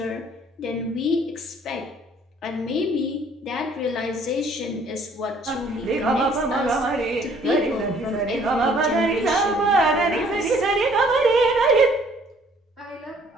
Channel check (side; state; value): both; normal; correlation 0.59